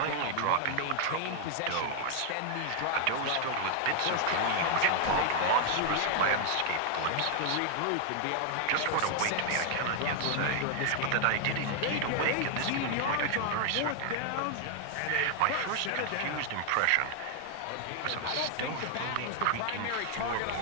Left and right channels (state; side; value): different; both; correlation 0.00